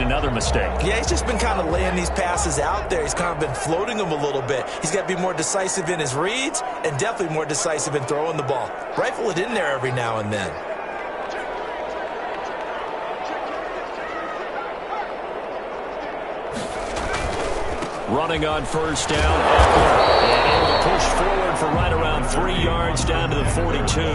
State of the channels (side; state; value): both; identical; correlation 1.00